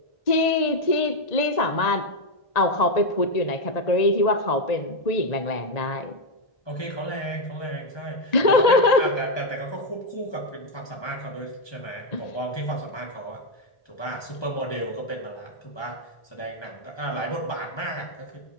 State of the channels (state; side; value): late; right; 1.8 ms